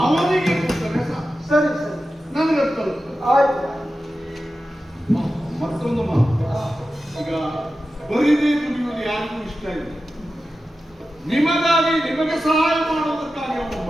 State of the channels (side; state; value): both; normal; correlation 0.93